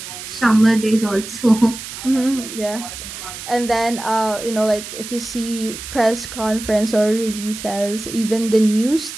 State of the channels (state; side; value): noise; right; hiss, 10 dB below the sound